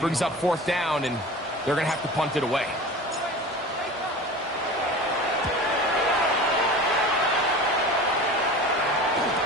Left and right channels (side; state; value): both; normal; correlation 0.36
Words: up 4th down, and they're going to have to punt it away.